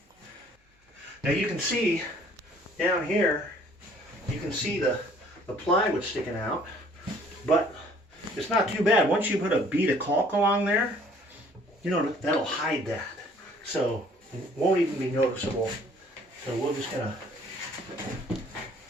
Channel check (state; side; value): normal; both; correlation 0.57